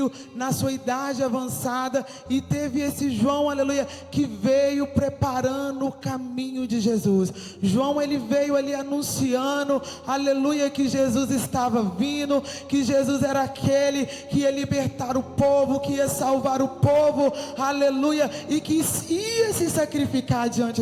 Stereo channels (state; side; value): identical; both; correlation 1.00